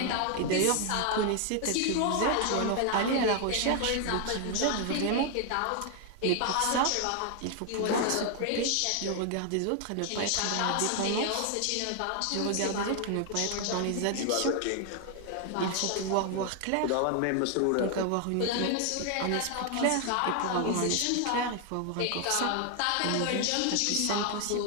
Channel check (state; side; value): different; both; correlation 0.00